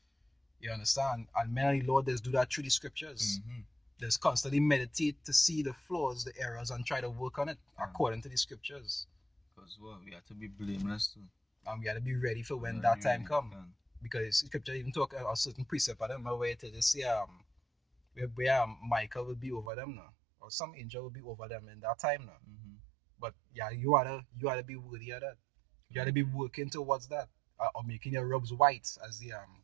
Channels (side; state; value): left; drops out; at 19.7 s